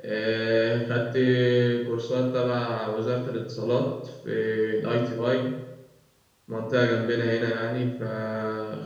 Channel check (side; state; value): both; identical; correlation 1.00